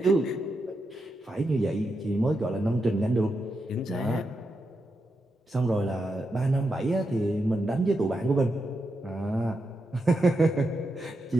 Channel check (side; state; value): both; normal; correlation 0.86